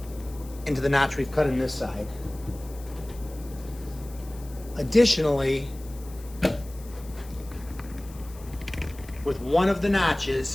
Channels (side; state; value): left; noise; hiss, 21 dB below the sound